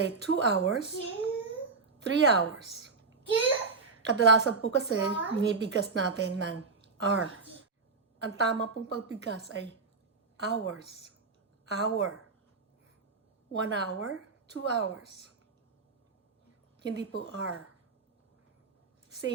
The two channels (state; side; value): quieter; left; 4.5 dB